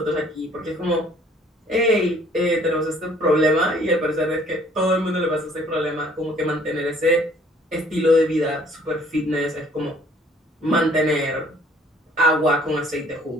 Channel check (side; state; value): both; normal; correlation 0.58